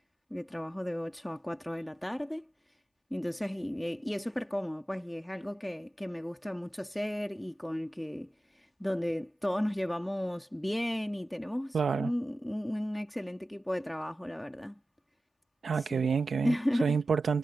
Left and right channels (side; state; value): both; normal; correlation 0.94